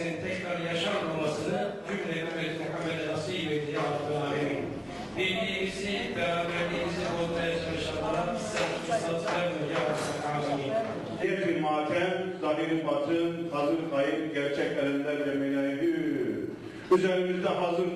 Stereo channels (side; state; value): both; identical; correlation 1.00